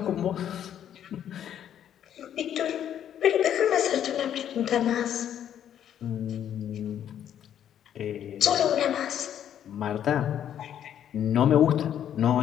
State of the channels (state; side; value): quieter; right; 10.0 dB